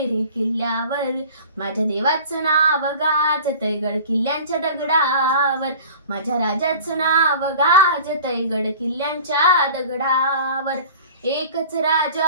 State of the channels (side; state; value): both; inverted; correlation -0.42